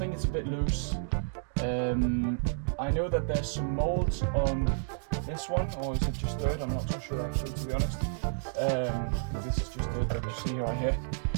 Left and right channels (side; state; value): left; silent; digital silence